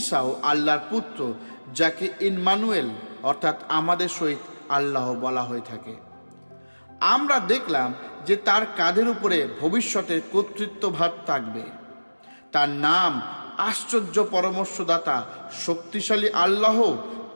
আল্লাহর পুত্র, যাকে ইম্মানুয়েল অর্থাৎ আমাদের সহিত আল্লাহ বলা হয়ে থাকে। আমরা দেখলাম যে তার কাঁধের উপরে ভবিষ্যতের কর্তৃত্বভার থাকবে। তার নাম আশ্চর্য পরামর্শদাতা, শক্তিশালী আল্লাহ,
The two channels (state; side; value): inverted; both; correlation -1.00